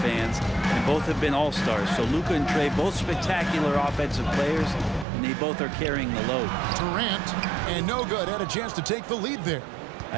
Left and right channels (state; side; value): drops out; left; at 5.1 s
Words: and both have been all-stars. So Luka and Trae, both spectacular offensive players, and they both are carrying the load. Durant, and no good, had a chance to take the lead there.